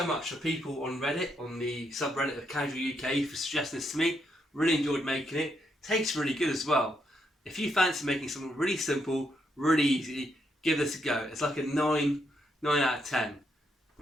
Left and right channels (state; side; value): normal; both; correlation 0.78